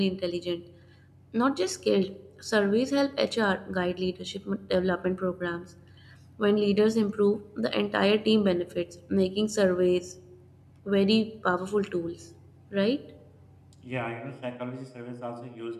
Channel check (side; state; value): both; identical; correlation 1.00